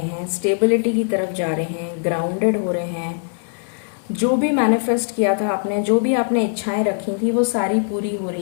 हैं, स्टेबिलिटी की तरफ जा रहे हैं, ग्राउंडेड हो रहे हैं। जो भी मैनिफेस्ट किया था आपने, जो भी आपने इच्छाएं रखी थी, वो सारी पूरी हो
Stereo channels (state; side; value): silent; right; digital silence